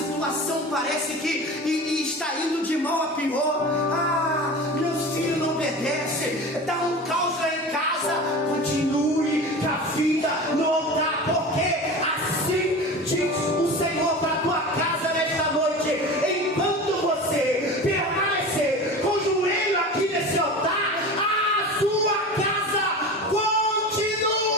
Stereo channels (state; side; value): normal; both; correlation 0.32